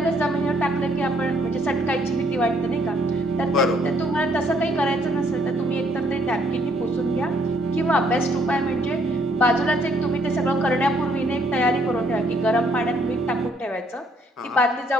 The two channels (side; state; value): both; normal; correlation 0.67